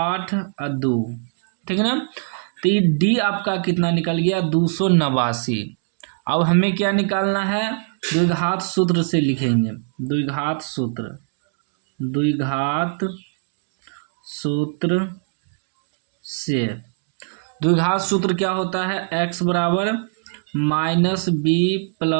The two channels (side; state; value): left; silent; digital silence